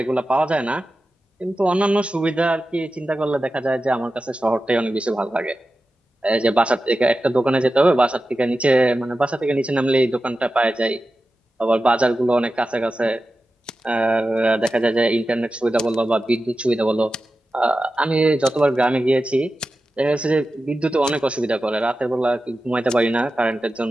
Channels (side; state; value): both; normal; correlation 0.93